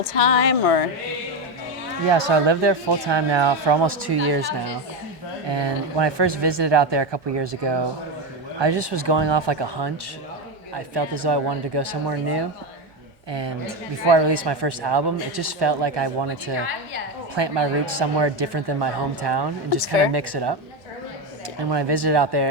time or? Yeah, so I live there full time now for almost 2 years now. And when I first visited out there a couple years ago, I just was going off like a hunch. I felt as though I wanted to go somewhere new. And before I released my first album, it just felt like I wanted to plant my roots somewhere different than my hometown and just kind fair. of mix it up. And when I visited out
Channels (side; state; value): both; normal; correlation 0.13